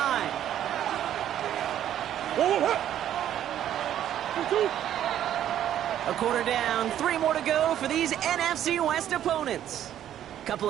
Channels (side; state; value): left; quieter; 11.0 dB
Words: A quarter down, 3 more to go for these NFC West opponents.